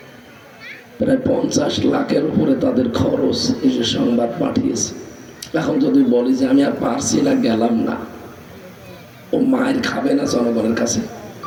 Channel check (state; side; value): identical; both; correlation 1.00